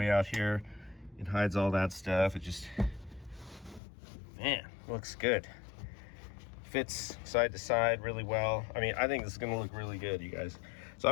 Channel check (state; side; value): drops out; right; at 3.8 s